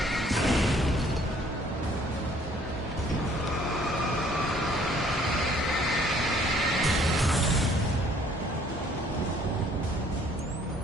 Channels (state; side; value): normal; both; correlation 0.59